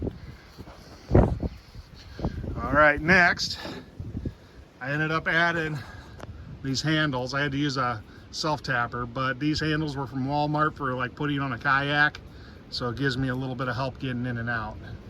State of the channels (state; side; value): identical; both; correlation 1.00